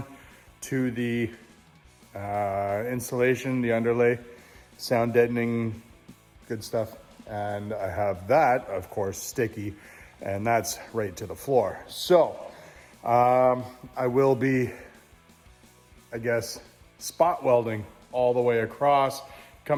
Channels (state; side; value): identical; both; correlation 1.00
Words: to the insulation, the underlay, sound deadening, good stuff. And I have that, of course, sticky, and that's right to the floor. So I will be, I guess, spot welding all the way across,